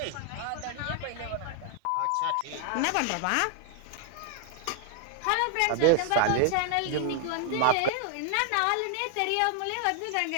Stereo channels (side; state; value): both; different; correlation 0.00